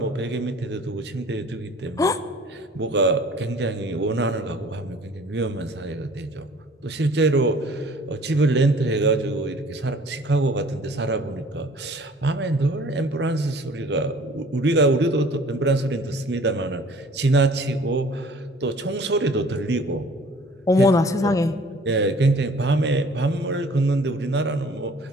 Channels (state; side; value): normal; both; correlation 0.51